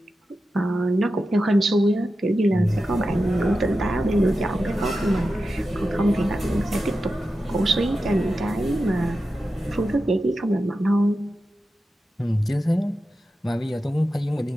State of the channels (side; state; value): both; normal; correlation 0.91